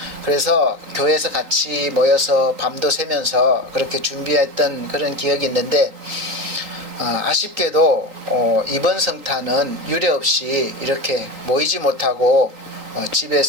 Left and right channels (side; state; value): left; late; 3.8 ms